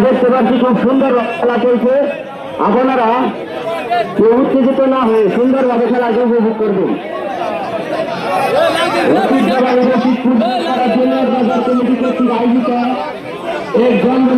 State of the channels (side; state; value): both; identical; correlation 1.00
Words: দেখতে পাচ্ছি খুব সুন্দর খেলা চলছে। আপনারা কেউ উত্তেজিত না হয়ে সুন্দরভাবে খেলাকে উপভোগ করবেন। আয়োজিত এক